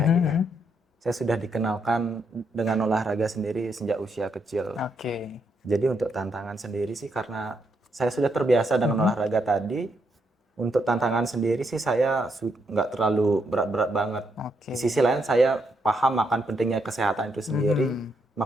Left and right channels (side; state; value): both; normal; correlation 0.78